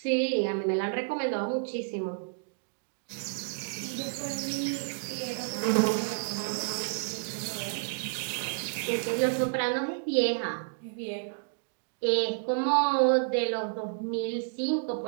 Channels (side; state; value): left; silent; digital silence